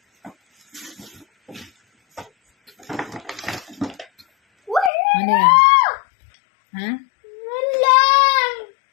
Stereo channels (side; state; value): right; drops out; at 4.9 s